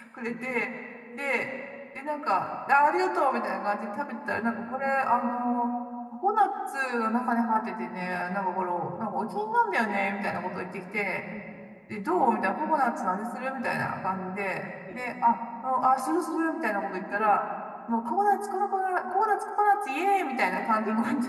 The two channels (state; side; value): identical; both; correlation 1.00